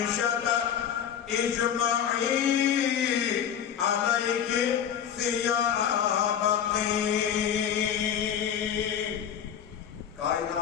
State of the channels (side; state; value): right; quieter; 8.8 dB